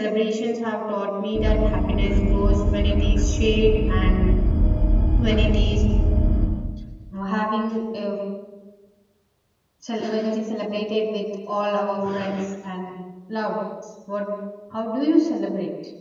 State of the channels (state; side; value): identical; both; correlation 1.00